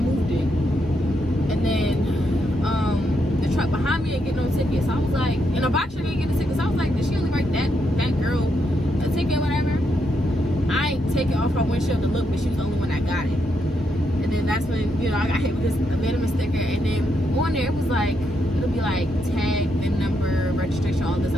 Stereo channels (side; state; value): both; normal; correlation 0.80